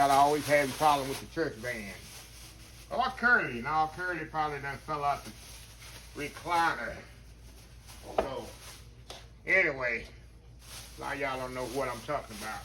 always having a problem with the church band. Or Curly. Now Curly probably done fell out the recliner. So, anyway, a lot of y'all don't know what I'm talking about,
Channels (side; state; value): both; identical; correlation 1.00